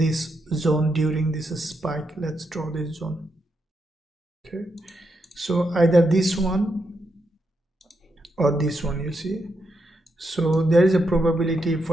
zone during this spike. Let's draw this zone. Okay, so either this one or this one, you see. So there is a probability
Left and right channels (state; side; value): normal; both; correlation 0.82